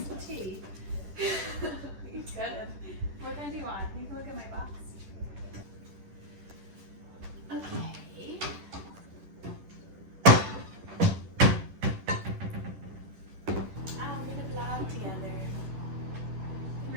some tea? You could. What kind do you want? You can look at my box. Okay. We're gonna vlog together.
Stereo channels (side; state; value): left; late; 10 ms